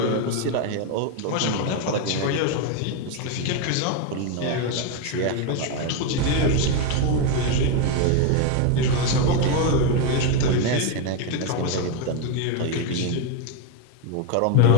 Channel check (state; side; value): different; both; correlation 0.02